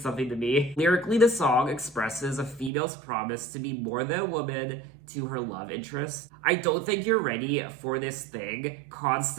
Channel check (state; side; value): drops out; left; at 2.7 s